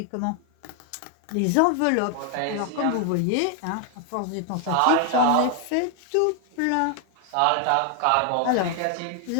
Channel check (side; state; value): both; different; correlation 0.00